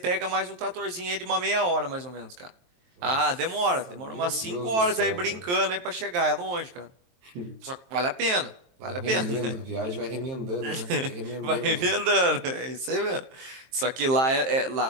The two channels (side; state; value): left; late; 23 ms